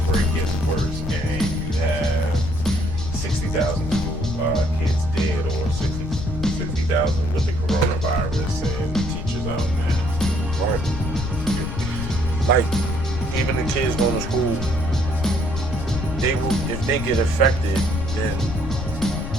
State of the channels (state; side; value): noise; left; rumble, 6 dB below the sound